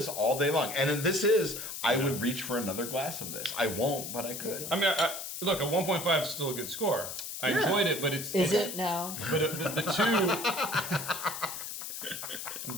all day long. And this is, I would reach for another glass of this. I won't, but I could. I mean, look, a 1.5 is still a good score. I enjoyed it, but it's Is it now? But the 2. I'm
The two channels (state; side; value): noise; left; hiss, 7 dB below the sound